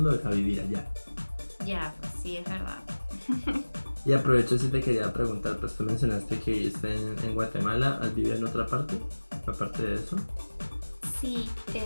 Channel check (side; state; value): both; inverted; correlation -1.00